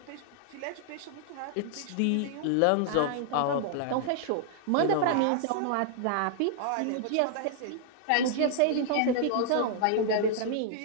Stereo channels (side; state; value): both; different; correlation -0.01